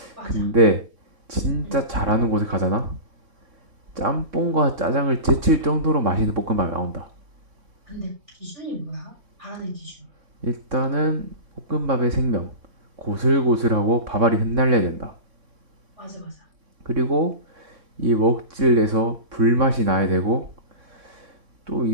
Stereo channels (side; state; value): left; late; 3.6 ms